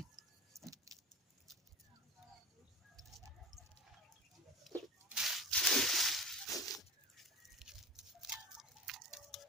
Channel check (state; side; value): normal; both; correlation 0.32